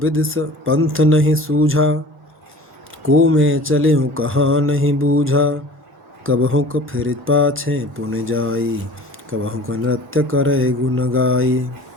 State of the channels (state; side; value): normal; both; correlation 0.43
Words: पंथ नहीं सूझा, को मैं चले हूँ कहाँ नहीं बूझा, कबहु को फिर पाछे पुन जाई, कबहु को नृत्य करे गुण गाई।